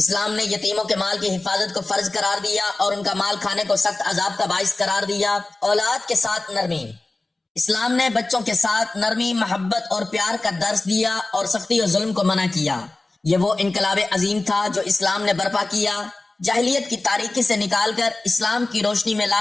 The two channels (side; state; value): right; quieter; 3.0 dB